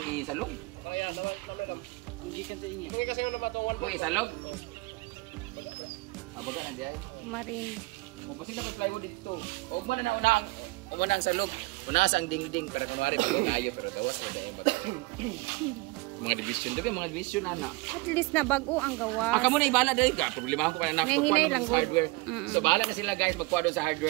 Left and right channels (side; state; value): left; quieter; 23.9 dB